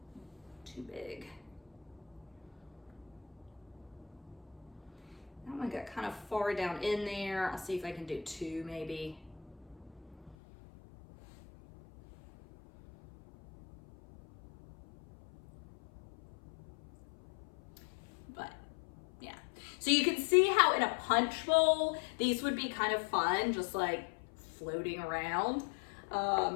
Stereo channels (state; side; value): drops out; right; at 10.4 s